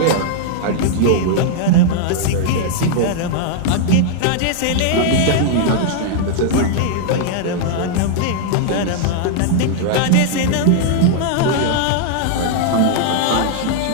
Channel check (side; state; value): both; different; correlation -0.01